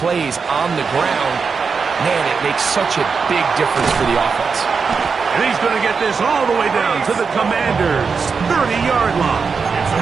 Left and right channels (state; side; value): quieter; left; 5.3 dB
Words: plays on the ground, man, it makes such a big difference for the offense. And he's going to get this all the way down to the Commanders' 30-yard line.